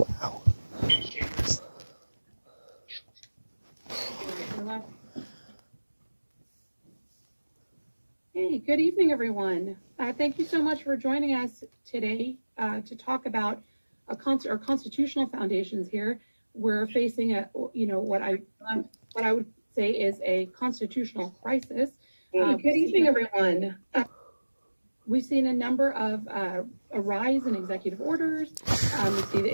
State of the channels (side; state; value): both; inverted; correlation -1.00